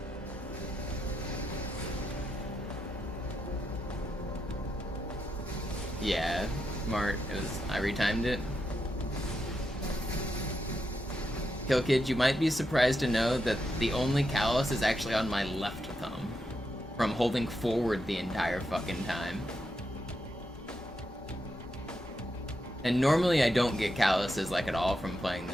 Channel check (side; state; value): both; normal; correlation 0.84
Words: Yeah, smart. I retimed it. Kill Kid, you might be surprised to know that the only callus is actually on my left thumb. From holding forward the entire fucking time. And normally I don't get calluses like at all from playing